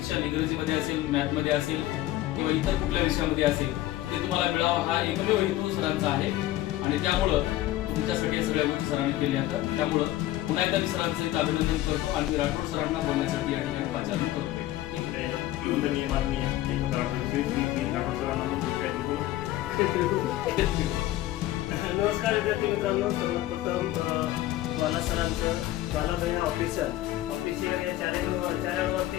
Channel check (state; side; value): quieter; right; 15.1 dB